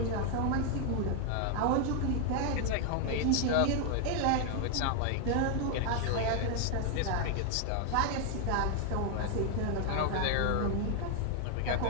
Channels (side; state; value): both; different; correlation 0.00